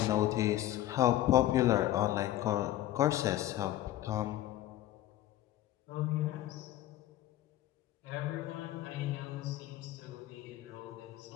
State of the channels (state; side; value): quieter; right; 14.1 dB